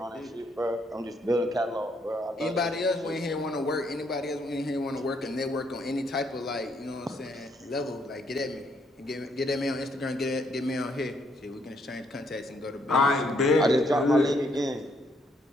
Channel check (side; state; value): both; normal; correlation 0.71